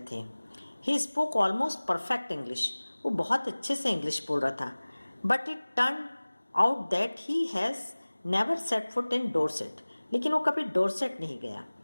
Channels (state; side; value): inverted; both; correlation -1.00